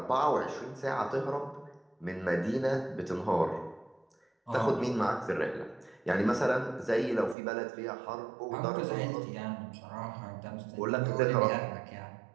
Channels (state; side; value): drops out; left; at 7.4 s